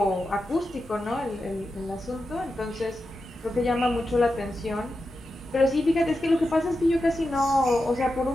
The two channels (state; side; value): normal; both; correlation 0.90